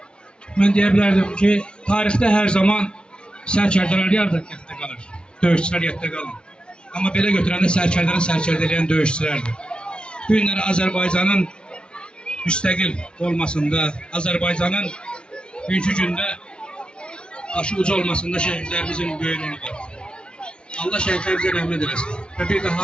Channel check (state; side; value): late; right; 0.056 ms